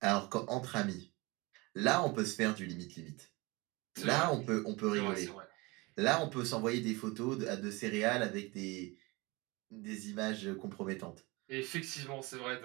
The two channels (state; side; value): quieter; left; 24.7 dB